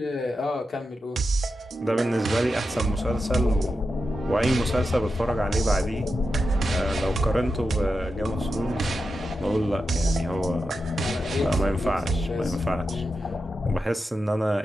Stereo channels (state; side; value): normal; both; correlation 0.89